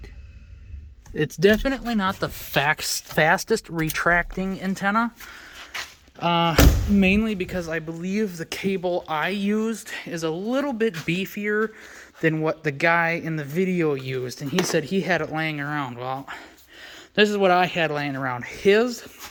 It's definitely not the fastest retracting antenna. Mainly because I believe the cable I used is a little bit beefier than what the guy in the video used, and he said he had it laying around. Well, this is what I had laying around. His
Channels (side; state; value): both; identical; correlation 1.00